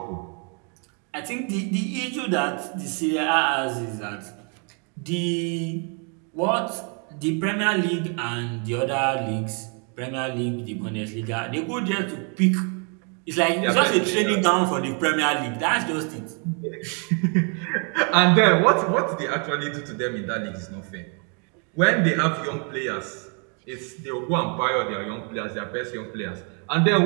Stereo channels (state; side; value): quieter; left; 38.2 dB